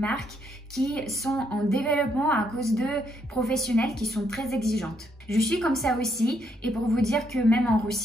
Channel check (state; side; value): normal; both; correlation 0.74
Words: qui sont en développement à cause de professionnels qui sont très exigeantes. Je suis comme ça aussi et pour vous dire que même en